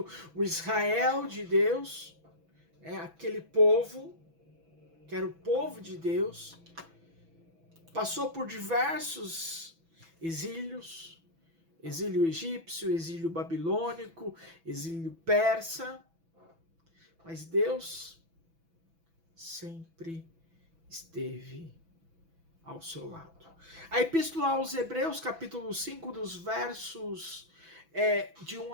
o Israel de Deus, aquele povo que era o povo de Deus, passou por diversos exílios, exílio egípcio, exílio babilônico, exílio persa, mas Deus sempre esteve ao seu lado. A Epístola aos Hebreus, capítulo 5, dos versos de 1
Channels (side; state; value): left; late; 6.1 ms